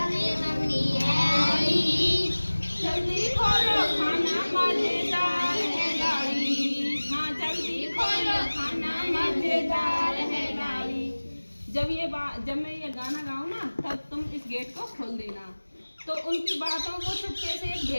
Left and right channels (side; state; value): both; inverted; correlation -1.00